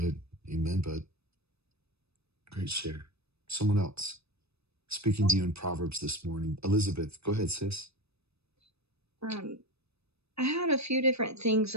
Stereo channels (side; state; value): left; late; 0.79 ms